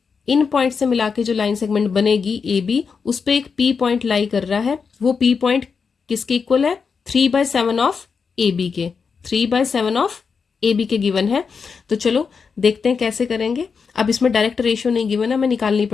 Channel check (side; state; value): right; quieter; 5.6 dB